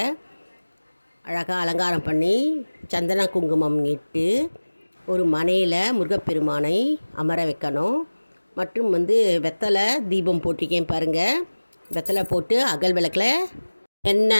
அழகாக அலங்காரம் பண்ணி சந்தன குங்குமம் இட்டு ஒரு மனையில் முருகப்பெருமானை அமர வைக்கணும். மற்றும் வெத்தலை தீபம் போட்டிருக்கேன் பாருங்கள். வெத்தலை போட்டு அகல் விளக்கில்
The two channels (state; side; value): inverted; both; correlation -1.00